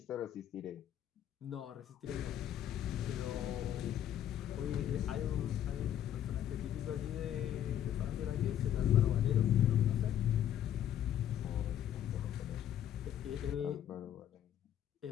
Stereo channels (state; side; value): quieter; right; 10.6 dB